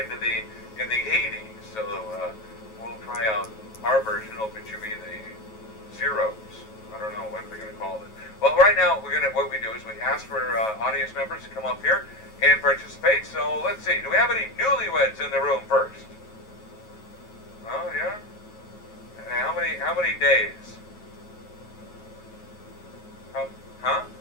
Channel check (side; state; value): right; late; 9.3 ms